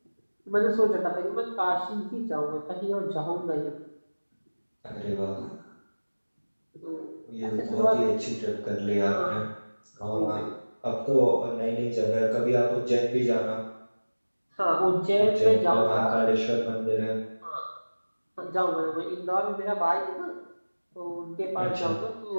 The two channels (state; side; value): inverted; both; correlation -1.00